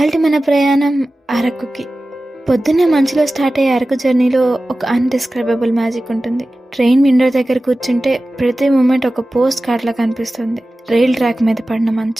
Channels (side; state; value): both; normal; correlation 0.95